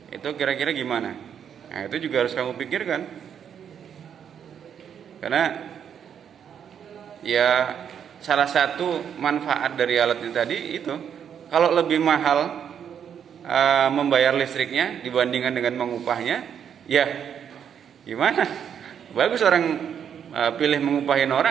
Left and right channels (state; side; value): quieter; left; 8.3 dB